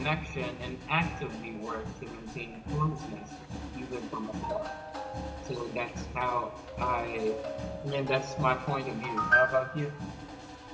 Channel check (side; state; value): both; identical; correlation 1.00